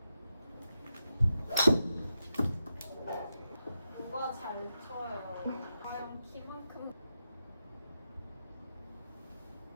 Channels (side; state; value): both; inverted; correlation -0.88